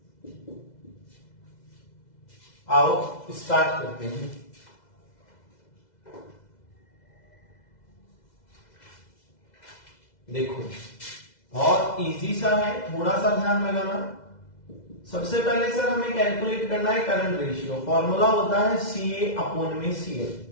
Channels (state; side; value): late; right; 2.0 ms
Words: आओ स्टार्ट करते हैं। देखो बहुत इजी सा है, थोड़ा सा ध्यान लगाना। सबसे पहले सर हमें कैलकुलेट करना है करंट रेशियो। फॉर्मूला होता है CA अपॉन में CL।